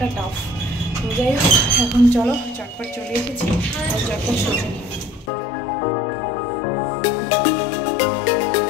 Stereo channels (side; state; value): right; drops out; at 5.3 s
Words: টাফ তো যাই হোক এখন চলো চটপট চলে এসেছি আর চটপট সোজা নিই